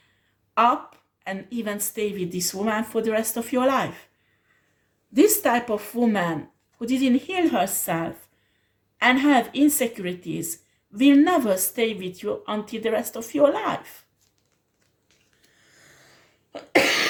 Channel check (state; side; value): identical; both; correlation 1.00